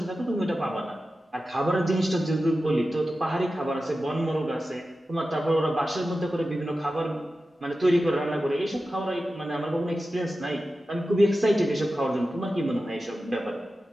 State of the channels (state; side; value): normal; both; correlation 0.93